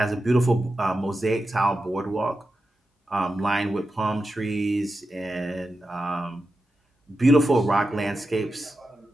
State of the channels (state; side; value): normal; both; correlation 0.90